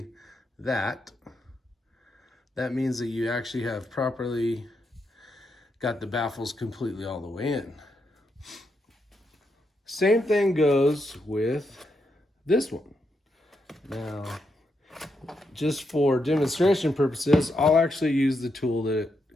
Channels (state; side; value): normal; both; correlation 0.82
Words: that means that you actually have properly got the baffles completely all the way in. Same thing goes with this one. Now, just for demonstration purposes, I'll actually use the tool that